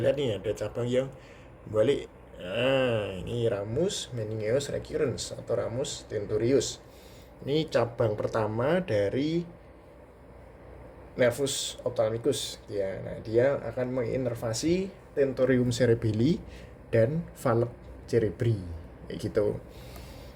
lihat nih ada cabang yang balik. Nah, ini ramus meningeus recurrens atau ramus tentorius. Ini cabang pertama dari nervus ophthalmicus ya. Nah, dia akan menginervasi tentorium cerebelli dan valve cerebri kayak gitu.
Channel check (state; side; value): identical; both; correlation 1.00